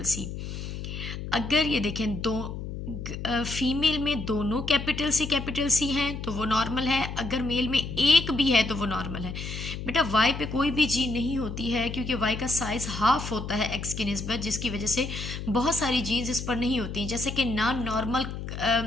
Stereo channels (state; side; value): noise; left; hum, 7 dB below the sound